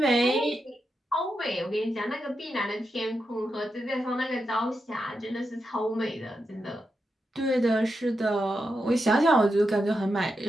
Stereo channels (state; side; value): normal; both; correlation 0.86